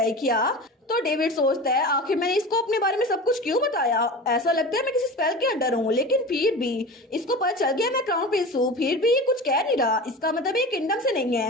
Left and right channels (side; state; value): both; normal; correlation 0.32